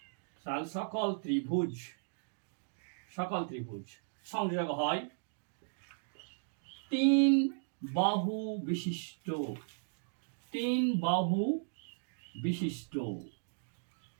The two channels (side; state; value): left; silent; digital silence